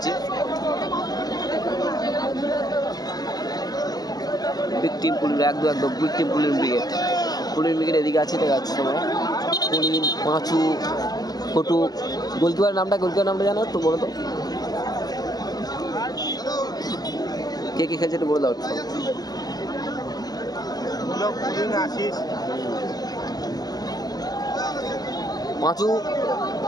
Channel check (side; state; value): right; late; 0.19 ms